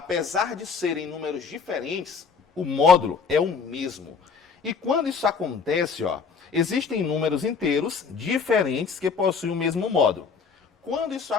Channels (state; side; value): quieter; right; 5.5 dB